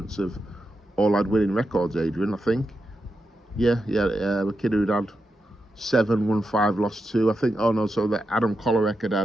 have all had winning records, Adrian, I think. Yeah, the kid who'd had 7, won 5, lost 2. I think, so that Adam Kolarek had, I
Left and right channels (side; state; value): both; normal; correlation 0.87